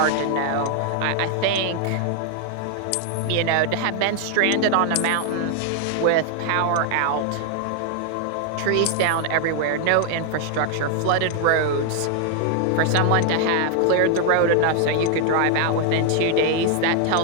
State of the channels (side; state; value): both; different; correlation 0.00